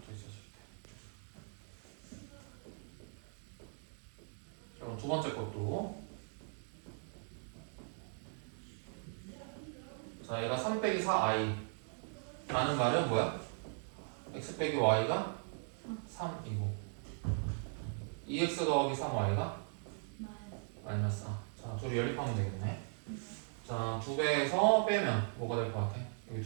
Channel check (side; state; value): left; silent; 52 dB below the other